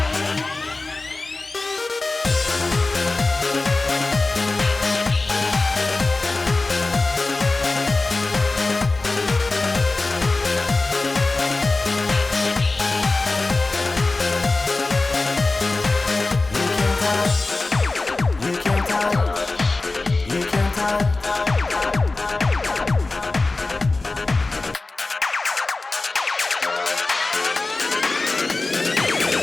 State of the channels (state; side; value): quieter; right; 3.4 dB